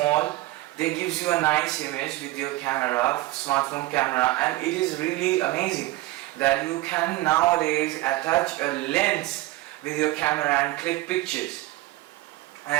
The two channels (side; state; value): left; quieter; 17.9 dB